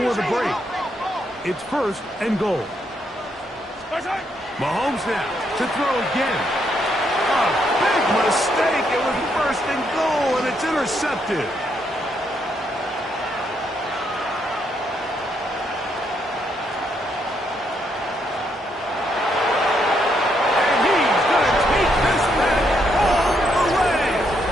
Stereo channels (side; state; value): both; normal; correlation 0.76